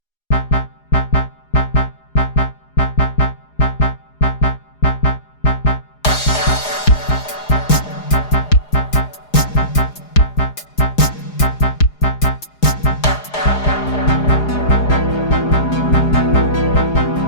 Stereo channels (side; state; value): right; late; 4.8 ms